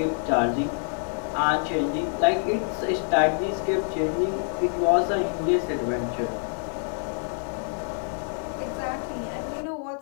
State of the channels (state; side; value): silent; right; 61 dB below the other